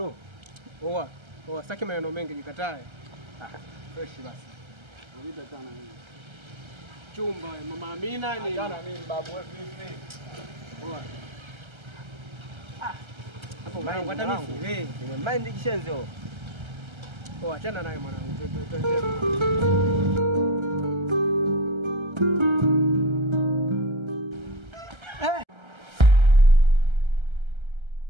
Sitaki maneno mengi, nikatae. Fresh basi. Unita sana mimi. Chumba, mama Amina ni. Jana mimi babu wewe vipi? Hapo mwanangu hata mimi sielewi. Nimemind kishenzo. Achana naye mwanangu.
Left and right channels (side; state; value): left; late; 1.3 ms